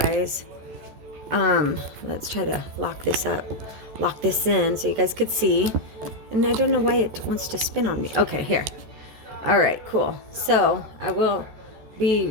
Let's try to lock this up. Lock this in so you guys could see. And I don't know why it wants to spin on me. Okay, here. All right, cool. So I will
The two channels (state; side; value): late; left; 14 ms